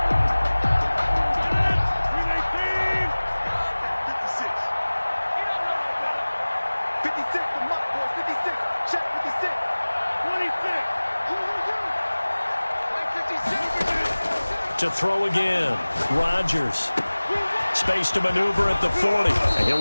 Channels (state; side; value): inverted; both; correlation -1.00